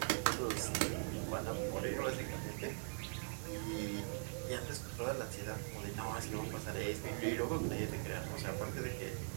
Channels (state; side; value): silent; left; digital silence